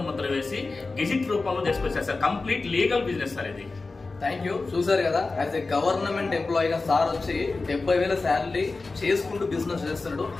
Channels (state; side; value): quieter; right; 3.7 dB